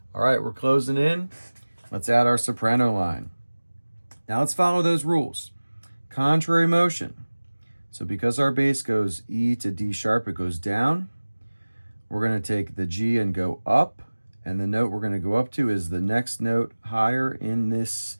All right, we're closing in. Let's add our soprano line. Now let's follow those rules. Contrary motion. So because our bass goes E to D sharp, it goes down. We're going to take the G and go up, and the note we're going to go up to is the next note higher in this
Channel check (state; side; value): inverted; both; correlation -1.00